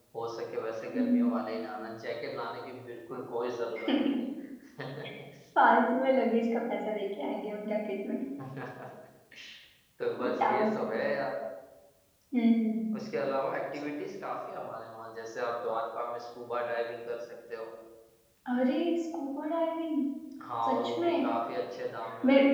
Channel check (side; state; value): both; identical; correlation 1.00